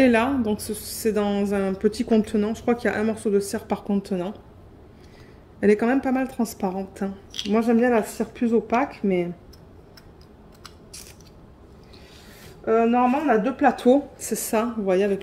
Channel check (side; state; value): both; identical; correlation 1.00